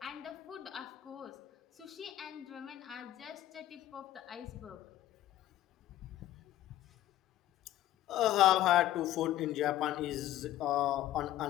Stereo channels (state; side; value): quieter; right; 13.7 dB